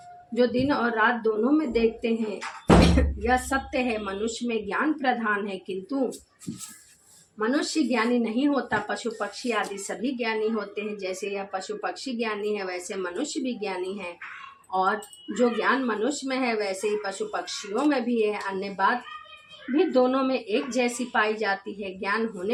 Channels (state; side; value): identical; both; correlation 1.00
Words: जो दिन और रात दोनों में देखते हैं। यह सत्य है। मनुष्य में ज्ञान प्रधान है, किंतु मनुष्य ज्ञानी नहीं होता। पशु पक्षी आदि सभी ज्ञानी होते हैं। जैसे यह पशु पक्षी ज्ञानी है, वैसे मनुष्य भी ज्ञानी है, और जो ज्ञान मनुष्य में है वैसे ही पशु पक्षियों में भी है। अन्य बात भी दोनों में एक जैसी पाई जाती है। ज्ञान